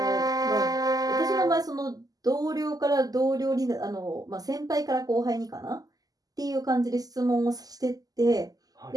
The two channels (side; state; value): left; late; 0.18 ms